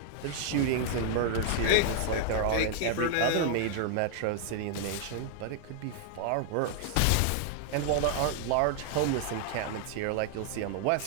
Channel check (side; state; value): both; different; correlation 0.00